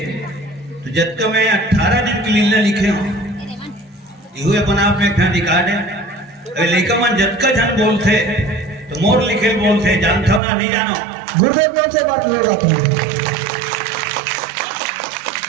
तो जत्का में 18 दिन की लीला लिखे हो, ये अपन आप में एक ठन रिकॉर्ड है। लेका मन जत्का जन बोलते तो मोर लिखे बोलते, जानता ना नहीं जानो गुरुदेव कौन से बात ले रहा था।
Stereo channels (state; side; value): drops out; left; at 10.4 s